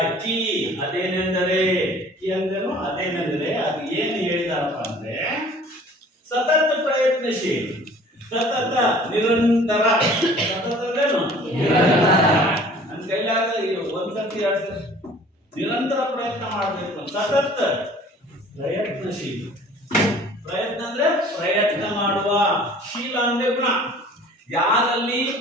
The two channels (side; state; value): both; normal; correlation 0.49